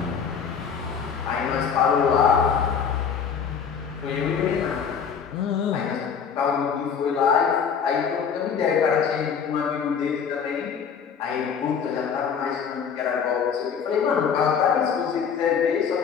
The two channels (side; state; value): right; quieter; 6.9 dB